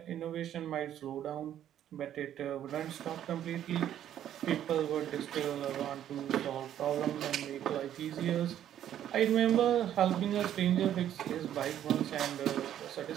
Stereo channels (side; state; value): left; quieter; 10.9 dB